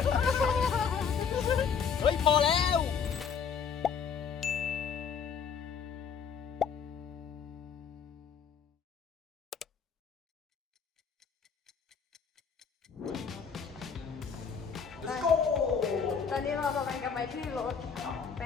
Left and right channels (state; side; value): quieter; right; 6.6 dB